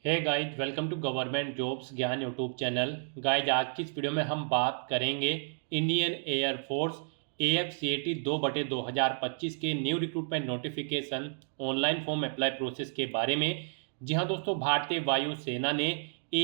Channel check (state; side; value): silent; left; digital silence